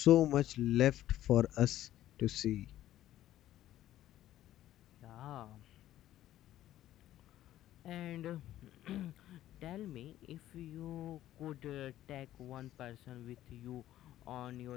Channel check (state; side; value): quieter; right; 13.3 dB